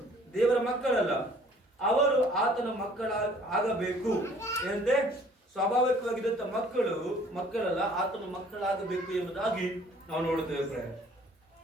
ದೇವರ ಮಕ್ಕಳಲ್ಲ, ಅವರು ಆತನ ಆಗಬೇಕು. ಏನಂತೆ? ಸ್ವಾಭಾವಿಕವಾಗಿದ್ದಂತ ಮಕ್ಕಳಲ್ಲ, ಆತನ ಮಕ್ಕಳಾಗಬೇಕು ಎಂಬುದಾಗಿ ನಾವು ನೋಡುತ್ತೇವೆ ಪ್ರಿಯ.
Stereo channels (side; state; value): both; normal; correlation 0.55